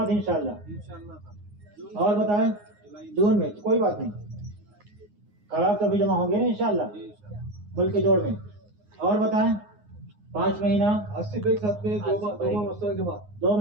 انشاءاللہ. اور بتائیں جون میں کوئی بات نہیں, خراب تو ابھی جمع ہوں گے نا انشاءاللہ ملک کے جوڑ میں. اور بتائیں 5 مہینہ 80 کے ساتھ میں 2 ماہ مستقبل کے بعد 2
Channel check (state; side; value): late; left; 9.6 ms